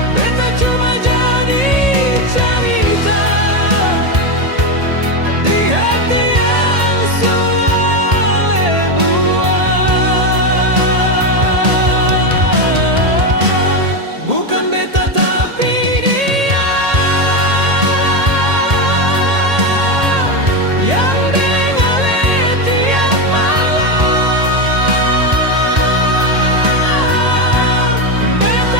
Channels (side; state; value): left; late; 1.8 ms